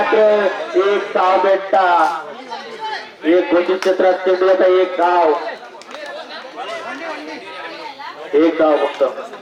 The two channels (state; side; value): identical; both; correlation 1.00